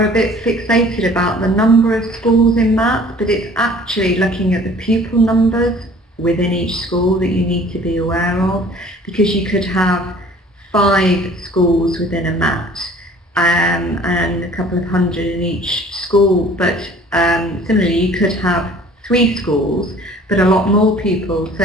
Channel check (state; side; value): normal; both; correlation 0.50